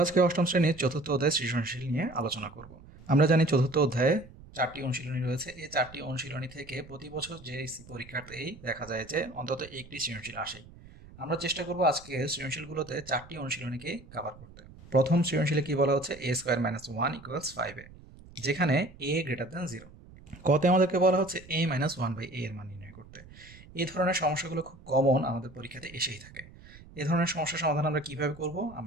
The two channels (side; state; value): right; noise; rumble, 20 dB below the sound